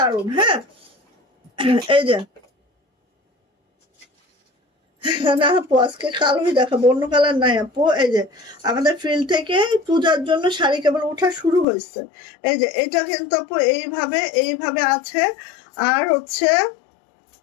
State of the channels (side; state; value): right; drops out; at 11.7 s